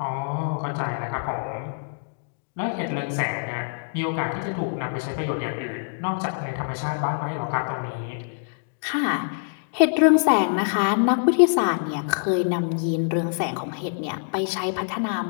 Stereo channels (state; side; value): silent; right; digital silence